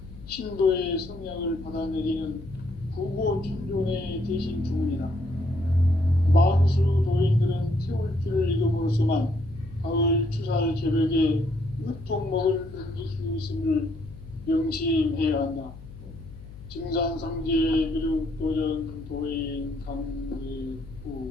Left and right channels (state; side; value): noise; left; hum, 16 dB below the sound